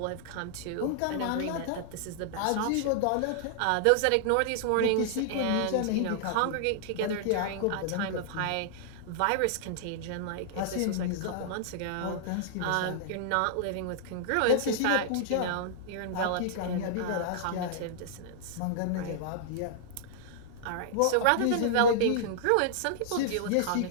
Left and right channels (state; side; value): different; both; correlation -0.01